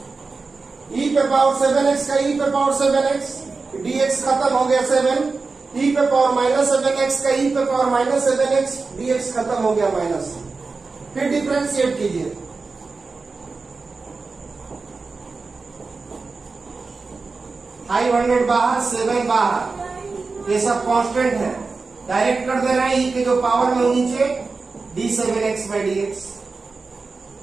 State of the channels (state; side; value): quieter; left; 4.1 dB